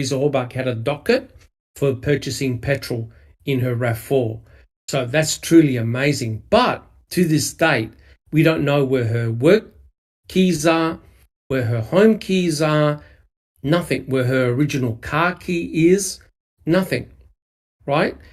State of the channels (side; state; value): both; identical; correlation 1.00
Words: Horbach had a docket for purchasing petrol in her RAV4. So that's truly amazing. But to this date, we don't know where her work keys are, where her home keys are, nothing, where her original car key is, nothing, right?